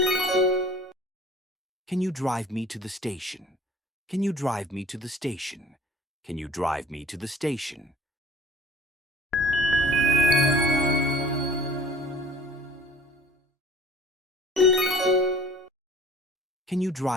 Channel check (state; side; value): normal; both; correlation 0.48